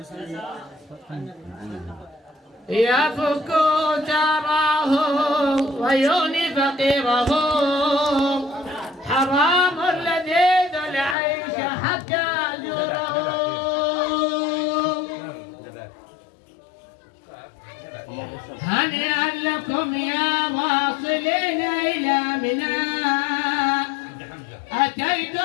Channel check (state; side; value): drops out; right; at 11.2 s